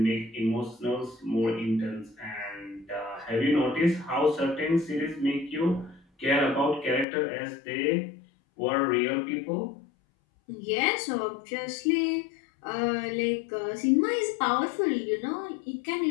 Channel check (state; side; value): drops out; right; at 7.1 s